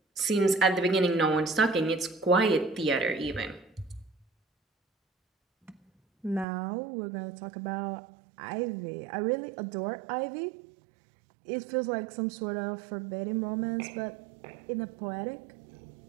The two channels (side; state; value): left; drops out; at 6.5 s